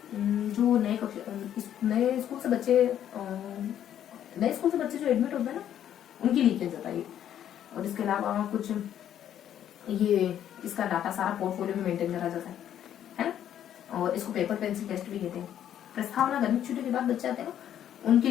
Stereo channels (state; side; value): quieter; right; 10.4 dB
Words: जो नए स्कूल से बच्चे जो एडमिट होते हैं ना, उनके लिए किया जाता है। और इसके अलावा कुछ ये इसका डाटा सारा पोर्टफोलियो में मेंटेन करा जाता है ना। और इसको पेपर पेंसिल टेस्ट भी कहते हैं। प्रस्तावना गर्मी छुट्टी के बाद बच्चे आते हैं ना, उनके